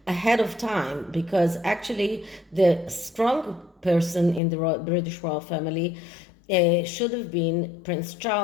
ahead of time, because actually the strong person in the British royal family should have been Prince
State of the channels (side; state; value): right; drops out; at 4.4 s